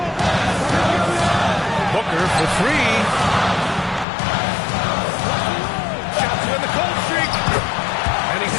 Booker for 3. Shot to win the cold streak. And he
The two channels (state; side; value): drops out; right; at 4.0 s